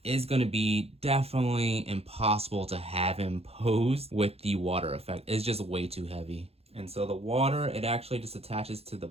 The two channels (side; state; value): left; late; 0.29 ms